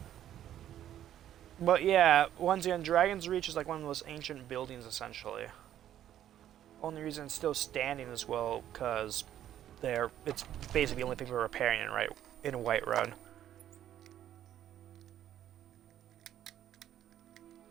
But yeah, once again, Dragon's Reach is like one of the most ancient buildings essentially. Only reason it's still standing as well, because it's basically the only thing we're repairing in Whiterun.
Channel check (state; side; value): quieter; left; 11.3 dB